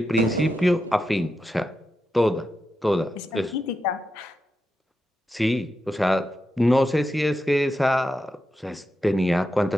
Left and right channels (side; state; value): both; normal; correlation 0.88